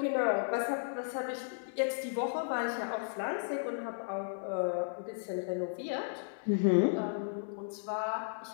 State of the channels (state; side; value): silent; right; digital silence